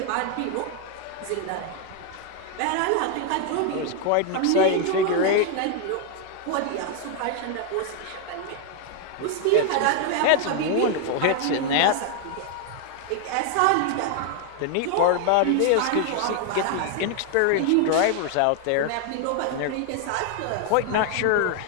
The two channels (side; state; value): both; different; correlation 0.00